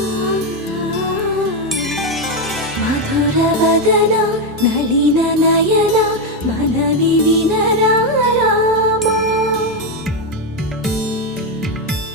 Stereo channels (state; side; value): normal; both; correlation 0.06